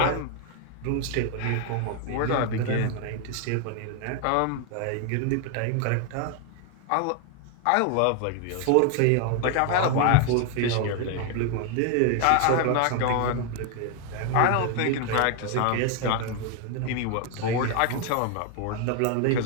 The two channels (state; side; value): different; both; correlation 0.01